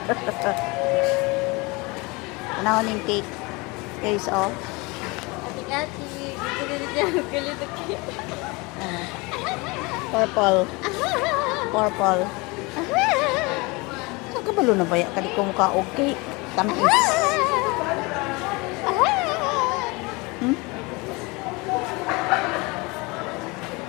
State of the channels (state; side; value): quieter; right; 25.9 dB